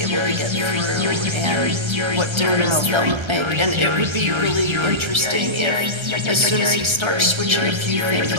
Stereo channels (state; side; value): late; left; 1.3 ms